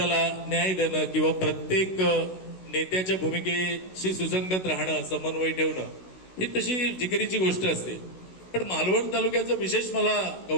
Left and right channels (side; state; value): right; late; 16 ms